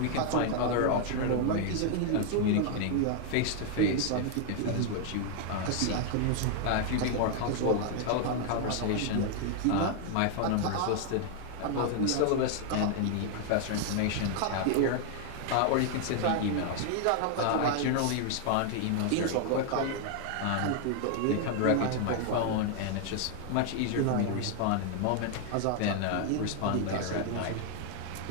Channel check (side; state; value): both; different; correlation 0.00